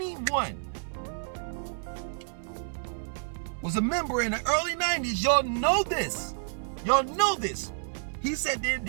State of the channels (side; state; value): left; silent; 58 dB below the other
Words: was a member in the early 90s, y'all know this. Y'all know this. He said